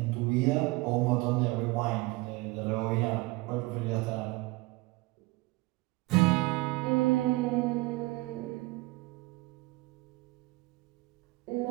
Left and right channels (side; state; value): left; quieter; 22.1 dB